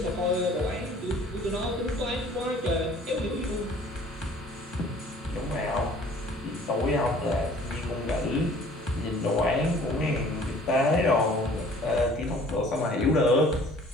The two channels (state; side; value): normal; both; correlation 0.52